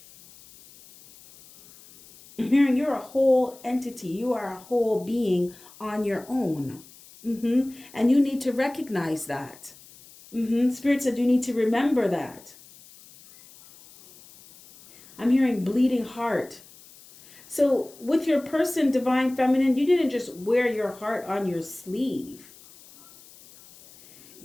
entity. You are a whole being on your own. And you need to recognize that. Spirit said you need to remember that. I'm hearing bleeding heart. So with your person, Divine Feminine, you didn't just wear your heart on your sleeve.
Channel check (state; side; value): noise; left; hiss, 23 dB below the sound